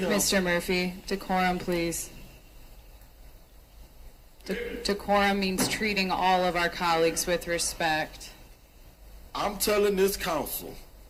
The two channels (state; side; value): identical; both; correlation 1.00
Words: Mr. Murphy, decorum, please. Decorum means treating all of our colleagues with respect. I'm telling this council,